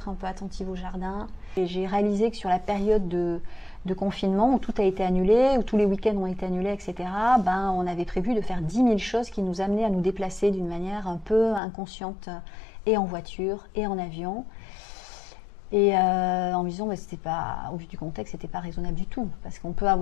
un peu attentive au jardin. Et j'ai réalisé que sur la période de confinement où tout a été annulé, où tous les week-ends ont été annulés, etc., on avait prévu de faire 10 000 choses qui nous amenaient à nous déplacer d'une manière un peu inconsciente, et en voiture et en avion. Et en me disant, bah, c'était pas, au vu du contexte, c'était pas raisonnable du tout. Parce qu'on peut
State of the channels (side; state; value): right; drops out; at 11.6 s